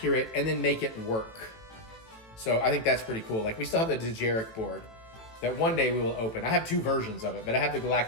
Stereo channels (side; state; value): right; late; 18 ms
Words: and then make it work. So I think that's pretty cool. Like we still have the TheEricButts board that one day we will open. I have 2 versions of it, but I have the